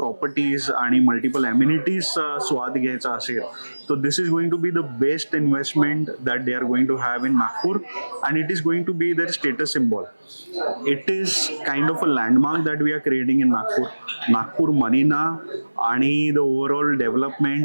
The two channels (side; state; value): both; inverted; correlation -1.00